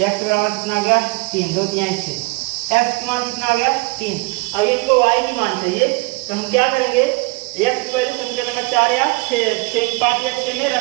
x बराबर कितना आ गया 3, 2 3 6, x का मान कितना आ गया 3। अब इनको y की मान चाहिए, तो हम क्या करेंगे, x की वैल्यू समीकरण नंबर 4 या 6 5 या 6 में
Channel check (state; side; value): quieter; left; 26.8 dB